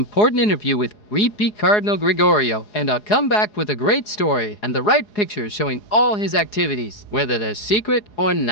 interview with repeat Cardinal Gregorio, and I'll come back with a great story and the right pictures showing all his activities, whether they're secret or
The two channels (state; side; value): late; right; 4.8 ms